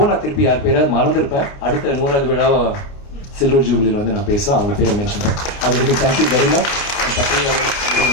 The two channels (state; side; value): late; right; 29 ms